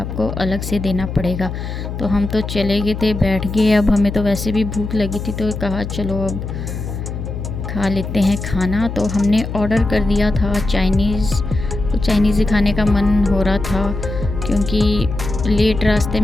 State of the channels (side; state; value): left; noise; hum, 6 dB below the sound